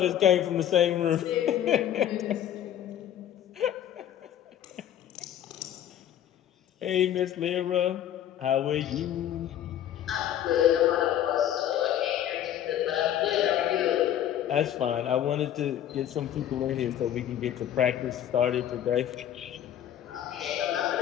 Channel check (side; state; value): right; quieter; 10.9 dB